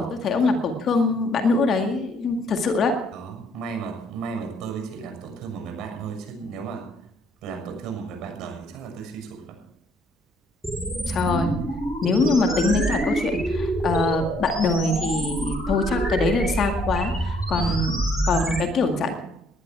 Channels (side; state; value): both; normal; correlation 0.66